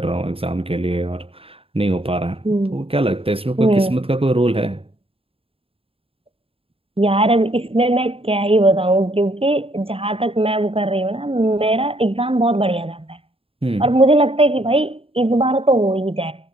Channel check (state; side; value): late; left; 0.27 ms